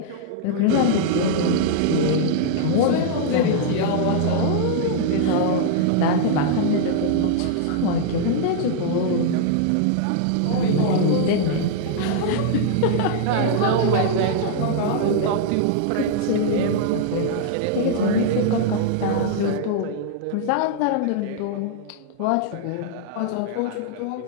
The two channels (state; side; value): different; both; correlation -0.01